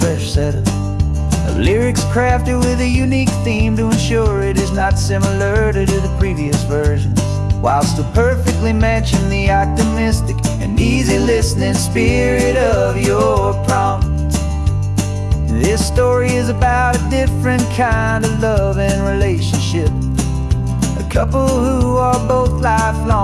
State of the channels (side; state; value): both; identical; correlation 1.00